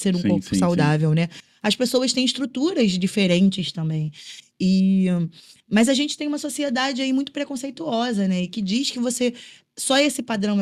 um Sim, corpo sim, sim. saudável, né? As pessoas têm estruturas diferentes também. E, mas a gente tem uma sociedade aí muito preconceituosa, né? E que diz que você só esse padrão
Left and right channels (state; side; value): identical; both; correlation 1.00